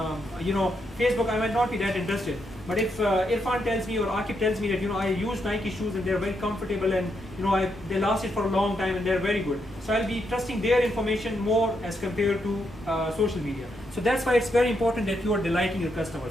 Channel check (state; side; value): normal; both; correlation 0.80